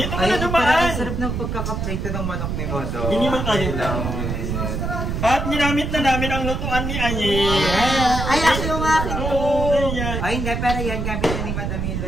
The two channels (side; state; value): right; noise; rumble, 2 dB below the sound